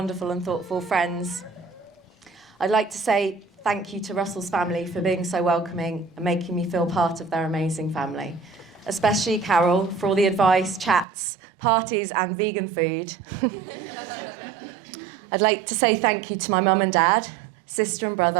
and thoughtful friends. I'd like to say thank you to Russell's family for being so welcoming and making me feel part of their amazing family. Especially Carol for all the advice, chats, parties and vegan food. I'd like to say thank you to my mum and dad, sister and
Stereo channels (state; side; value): drops out; left; at 11.1 s